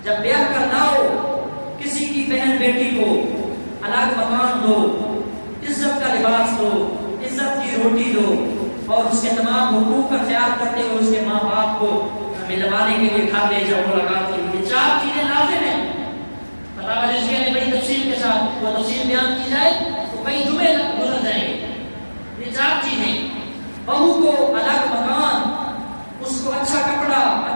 جب بیاہ کرنا ہو, کسی کی بہن بیٹی کو الگ مکان دو, عزت کا لباس دو, عزت کی روٹی دو, اور اس کے تمام حقوق کا خیال کرتے ہوئے اس کے ماں باپ کو ملوانے کے لیے گھر لے جاؤ ملاقات کے لیے. 4 چیزیں لازم ہیں. فتاوی رضویہ نے بڑی تفصیل کے ساتھ وہ تفصیل بیان کی جائے تو کئی جمعے گزر جائیں گے. یہ 4 چیزیں, بہو کو الگ مکان, اس کو اچھا کپڑا,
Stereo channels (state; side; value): inverted; both; correlation -1.00